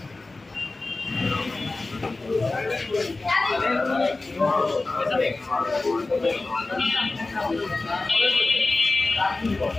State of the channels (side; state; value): right; quieter; 3.3 dB